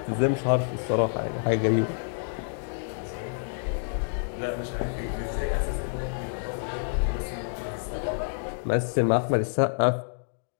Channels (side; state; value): right; silent; digital silence